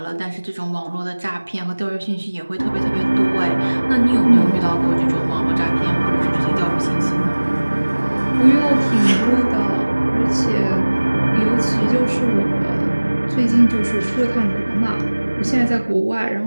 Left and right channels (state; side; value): inverted; both; correlation -1.00